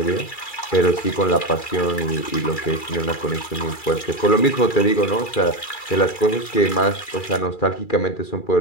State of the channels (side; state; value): right; late; 2.3 ms